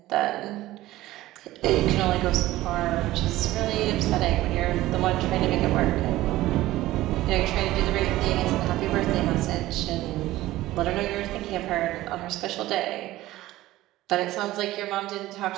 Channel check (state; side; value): quieter; left; 16.4 dB